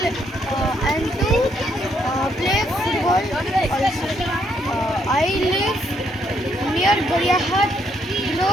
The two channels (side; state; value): both; normal; correlation 0.73